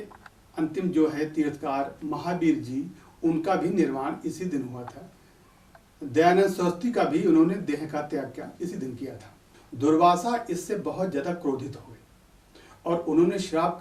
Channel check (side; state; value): both; identical; correlation 1.00